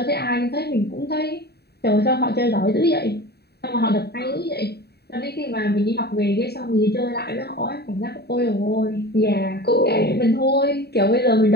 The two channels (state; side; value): late; right; 0.47 ms